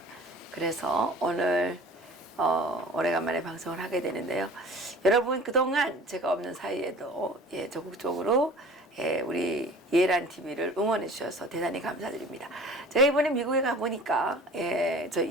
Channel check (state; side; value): normal; both; correlation 0.44